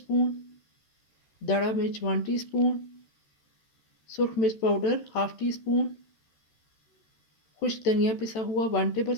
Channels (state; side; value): late; right; 13 ms